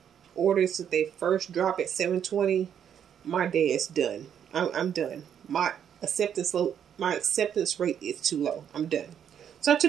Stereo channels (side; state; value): left; quieter; 8.8 dB